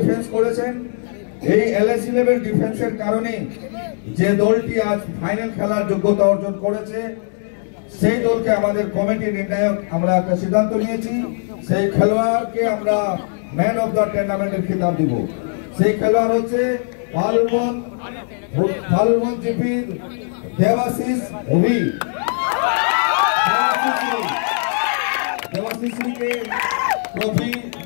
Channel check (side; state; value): right; silent; digital silence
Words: করেছেন। এই এলএসি লেভেল ডিফেন্সের কারণে যে দলটি আজ ফাইনাল খেলার যোগ্যতা অর্জন করেছে সেই দলকে আমাদের কমিটি নির্ণায়ক আমরা একটা সিদ্ধান্ত নিয়েছি, সেই খেলোয়াড়কে আমরা ম্যান অফ দ্য টুর্নামেন্টের খিতাব দিব। সেই খেলোয়াড় হচ্ছে ফালুন জিপির দেবাশিস রবি। দেবাশিসকে ট্রফি